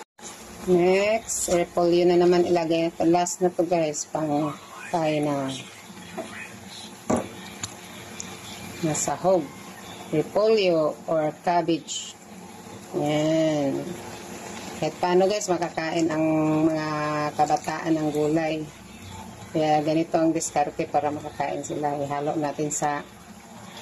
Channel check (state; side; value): identical; both; correlation 1.00